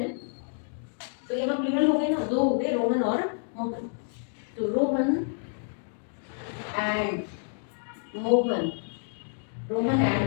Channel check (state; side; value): silent; right; digital silence